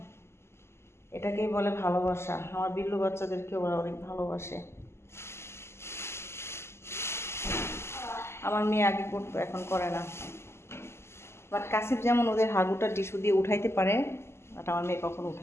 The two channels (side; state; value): right; late; 0.12 ms